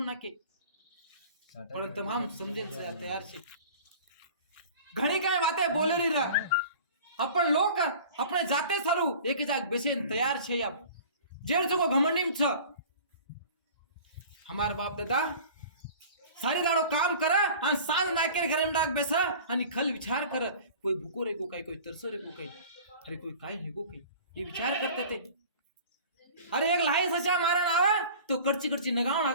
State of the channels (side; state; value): both; inverted; correlation -0.42